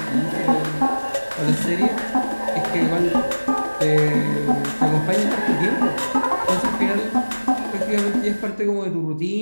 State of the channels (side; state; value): both; inverted; correlation -1.00